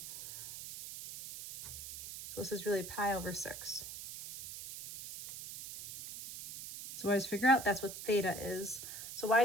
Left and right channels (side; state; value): right; noise; hiss, 10 dB below the sound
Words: So this is really pi over 6. So I just figure out that's what theta is. So why